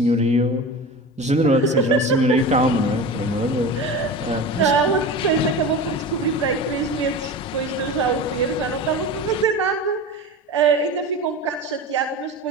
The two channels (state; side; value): normal; both; correlation 0.30